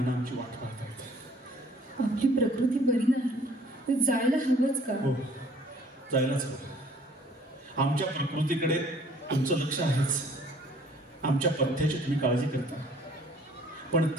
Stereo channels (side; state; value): both; normal; correlation 0.56